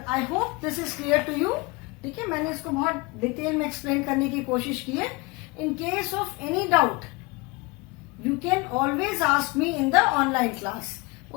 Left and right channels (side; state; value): right; quieter; 25.5 dB